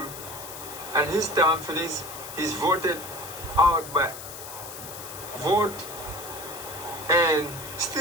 and his term finishes, he's voted out by vote, and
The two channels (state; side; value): noise; left; hiss, 11 dB below the sound